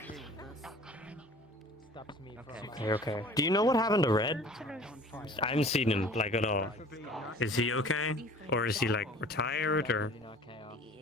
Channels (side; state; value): both; normal; correlation 0.46